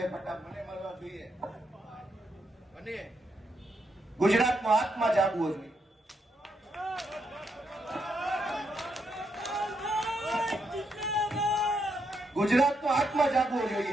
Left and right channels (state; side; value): normal; both; correlation 0.79